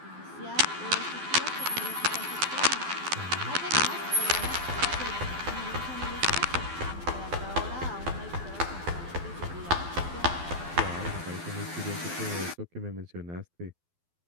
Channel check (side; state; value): left; late; 12 ms